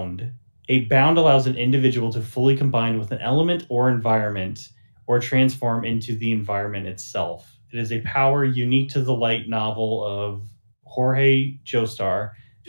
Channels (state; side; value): inverted; both; correlation -1.00